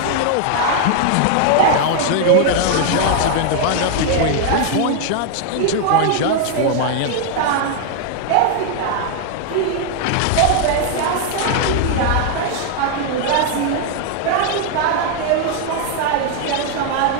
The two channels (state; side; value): different; both; correlation 0.00